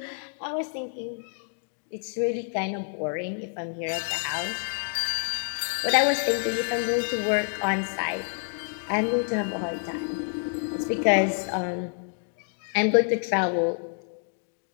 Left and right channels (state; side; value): silent; right; 55 dB below the other